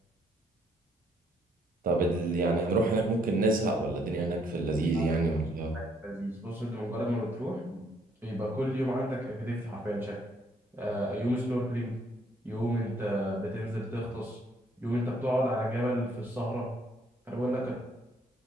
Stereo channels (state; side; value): normal; both; correlation 0.68